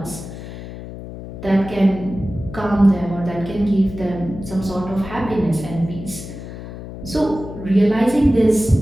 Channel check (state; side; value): noise; left; hum, 11 dB below the sound